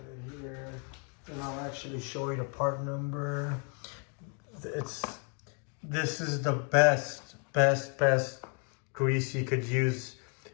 it here, and I'll actually show you the part number. This is the best grease you could use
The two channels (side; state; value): right; quieter; 38.9 dB